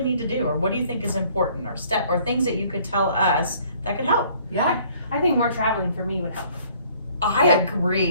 need to do, or what do you think is important, or things that you could tell us that could help? Yeah, I think more traveling for me would help. I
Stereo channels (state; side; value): inverted; both; correlation -0.58